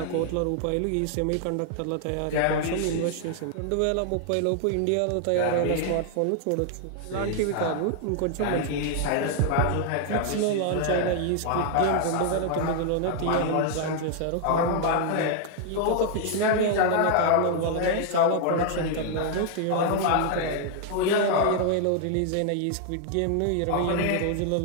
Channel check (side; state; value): both; different; correlation 0.00